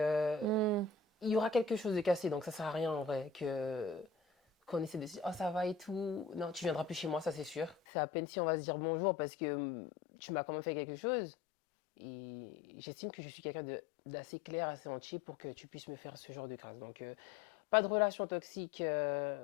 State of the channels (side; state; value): right; drops out; at 7.8 s